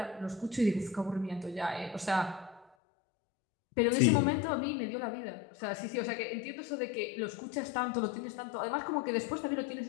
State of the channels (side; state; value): right; drops out; at 2.7 s